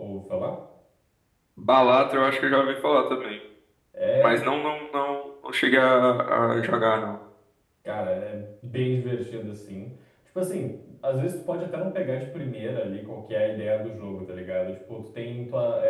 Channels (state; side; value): identical; both; correlation 1.00